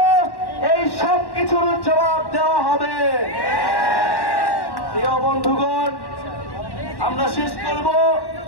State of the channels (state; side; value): late; right; 1.1 ms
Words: এই সব কিছুর জবাব দেওয়া হবে। প্রিয় বন্ধুগণ, আমরা